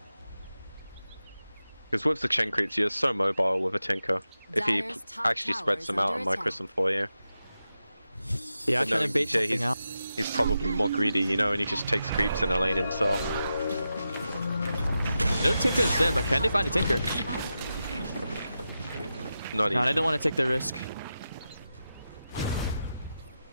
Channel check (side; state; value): both; inverted; correlation -0.90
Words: Because with the chain creeps, you're so mobile with a Tinker. If he actually spreads them out and micros them for you. Yeah, I'm trying to bait something out. He's probably more greedy, you know, and he just takes creeps in a lane himself. No Tinker is there, but can they find a Tinker? Not No, I don't want to take the risk.